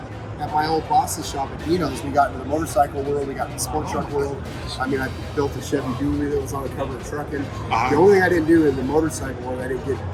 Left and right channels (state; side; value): identical; both; correlation 1.00